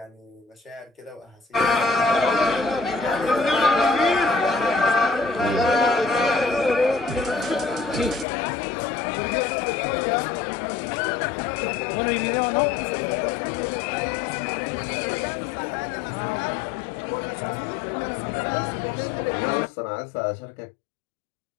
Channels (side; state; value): right; drops out; at 8.2 s